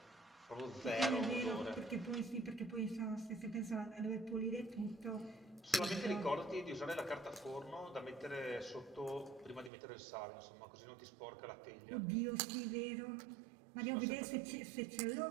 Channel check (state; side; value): drops out; left; at 9.7 s